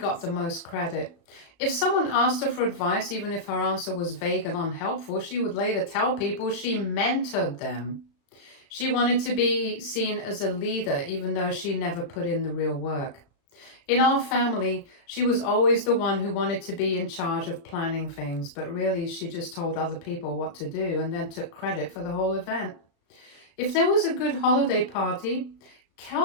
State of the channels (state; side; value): late; right; 35 ms